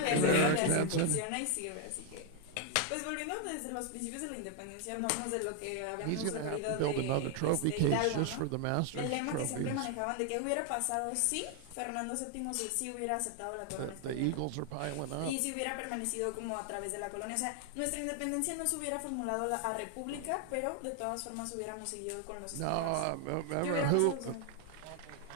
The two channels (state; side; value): different; both; correlation 0.01